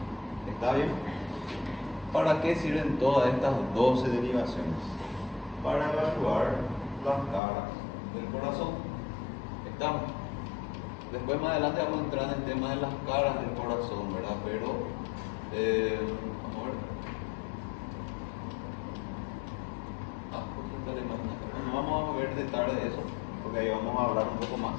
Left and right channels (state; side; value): drops out; right; at 7.4 s